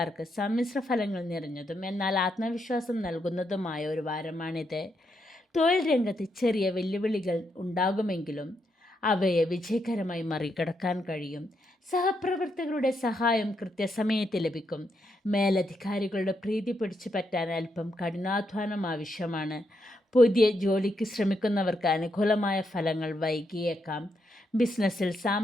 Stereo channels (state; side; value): normal; both; correlation 0.80